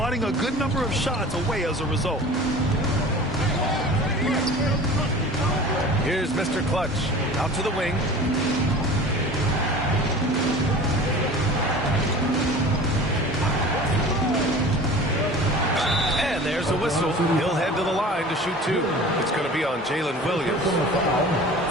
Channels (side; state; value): both; normal; correlation 0.40